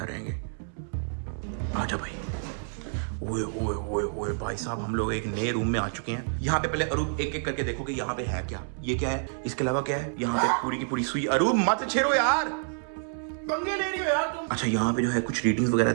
रहेंगे। आजा भाई। ओए भाई साहब, हम लोग एक नए रूम में आ चुके हैं। यहाँ पे पहले अरूप एक करके देखो कि यहाँ पे है क्या। ये क्या है? इसके अलावा क्या है? यहाँ पे पूरी की पूरी सुई। अरूप मत छेड़ो यार, पंगे ले रही हो यार तुम। अच्छा, यहाँ पे जो है कुछ रीडिंग्स वगैरह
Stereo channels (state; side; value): silent; left; 59 dB below the other